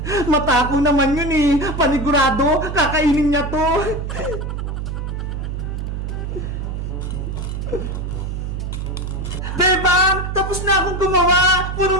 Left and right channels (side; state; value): right; noise; hum, 4 dB below the sound